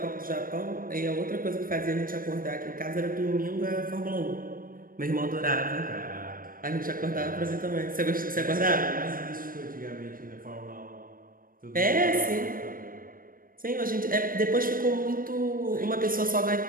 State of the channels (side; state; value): left; late; 0.41 ms